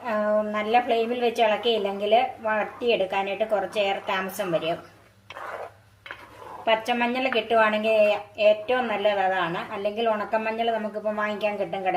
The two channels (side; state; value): both; identical; correlation 1.00